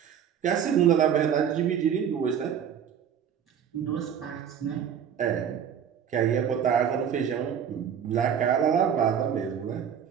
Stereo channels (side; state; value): left; quieter; 8.4 dB